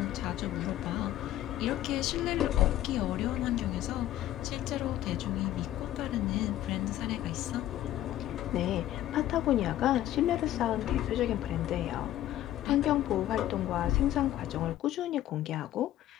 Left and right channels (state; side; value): quieter; right; 13.3 dB